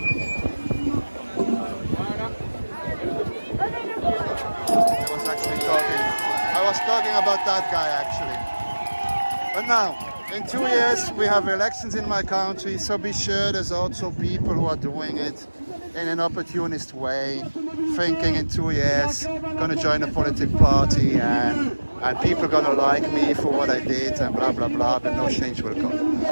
About that guy actually. But now, in 2 years we have elections in my country, so be sure there's also people who are doing it in an opportunist way, thinking in 2 years gonna join a political party and people gonna like me for what I did and blah blah blah, but no change will come.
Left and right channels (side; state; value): both; inverted; correlation -1.00